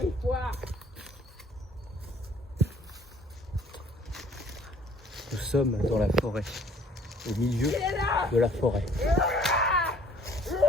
une fois. Nous sommes dans la forêt, au milieu de la forêt.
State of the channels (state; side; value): normal; both; correlation 0.55